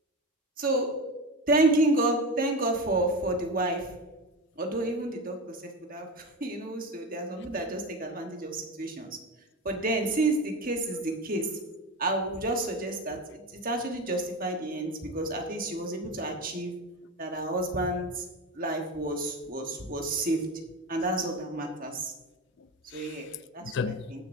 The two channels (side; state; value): both; normal; correlation 0.23